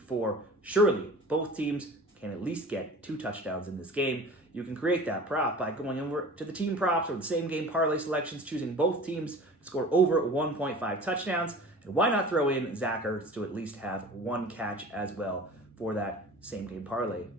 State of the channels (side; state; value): both; normal; correlation 0.40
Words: Surely, both teams can at least get 2 touchdowns in this game. You can create that prop by going over to the team props or the same game parlay selections, choosing both teams to score over 1.5 touchdowns. And why not throw in Zach Ertz to at least have 1 catch as well for that same game parlay,